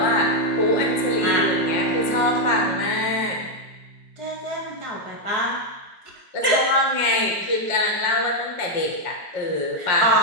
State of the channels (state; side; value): late; right; 5.5 ms